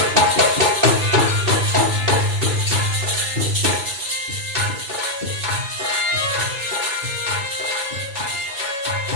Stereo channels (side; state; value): left; late; 2.6 ms